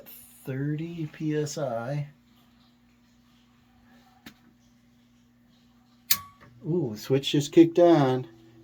30 psi. Ooh, the switch just kicked on.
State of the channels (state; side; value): identical; both; correlation 1.00